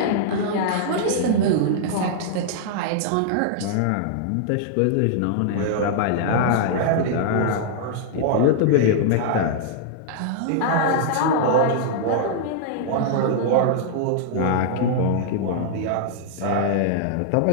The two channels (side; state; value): both; different; correlation -0.01